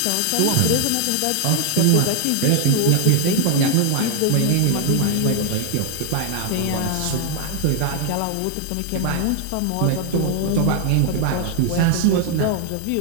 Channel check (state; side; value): different; both; correlation 0.00